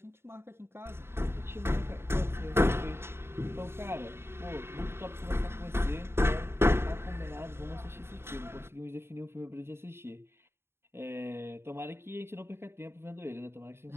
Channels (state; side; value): late; left; 0.12 ms